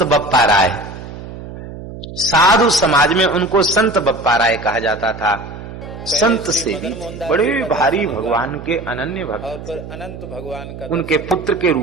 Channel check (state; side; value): noise; right; hum, 12 dB below the sound